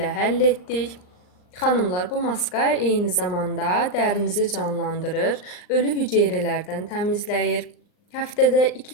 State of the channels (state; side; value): late; right; 39 ms